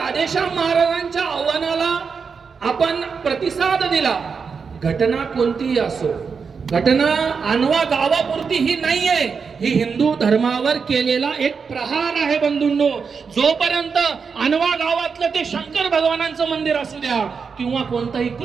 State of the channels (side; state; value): left; quieter; 5.6 dB